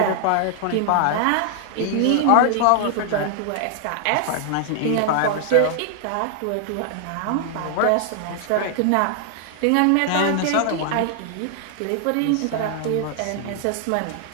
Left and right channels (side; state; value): both; different; correlation 0.00